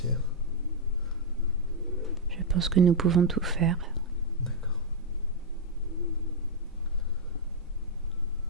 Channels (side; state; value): both; normal; correlation -0.03